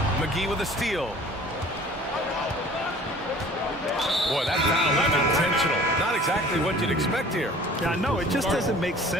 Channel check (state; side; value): normal; both; correlation 0.48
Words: McGee with a steal. Boy, that foul was intentional. Not exactly what you'd expect here. Yeah, I know. It just doesn't make